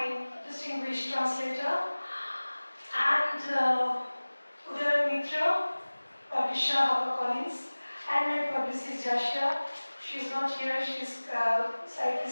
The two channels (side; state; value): both; inverted; correlation -1.00